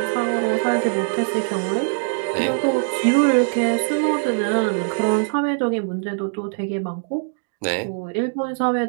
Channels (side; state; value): left; silent; digital silence